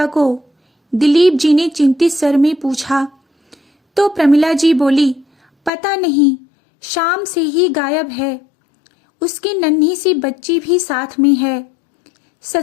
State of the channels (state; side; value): drops out; right; at 5.7 s